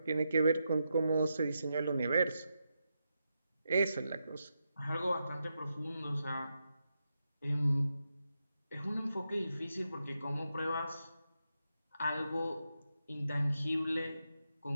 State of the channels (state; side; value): inverted; both; correlation -0.86